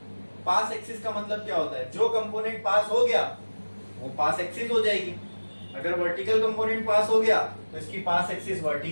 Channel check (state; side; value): inverted; both; correlation -1.00